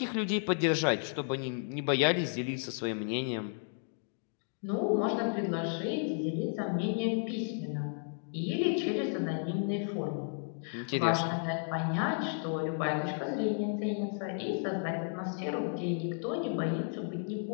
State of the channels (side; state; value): right; silent; 56 dB below the other